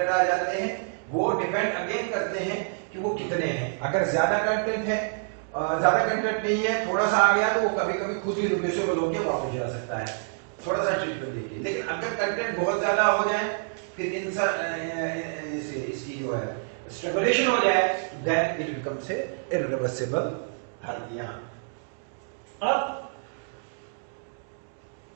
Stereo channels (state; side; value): silent; left; digital silence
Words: आ जाते हैं वो डिपेंड अगेन करते हैं कि वो कितने हैं। अगर ज्यादा कंटेंट है, ज्यादा कंटेंट नहीं है, थोड़ा सा आ गया, तो वो कभी कभी खुद ही रिड्यूसेबल होकर वापस जा सकता है, थोड़ा सा ट्रीटमेंट देखिए। लेकिन अगर कंटेंट बहुत ज्यादा हो जाए, फिर इसकी जो है स्ट्रगुलेशन हो जाए, then it becomes a irreversible hernia. अब